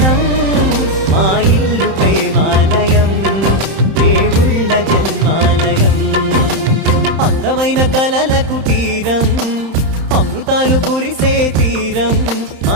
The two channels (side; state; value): left; late; 31 ms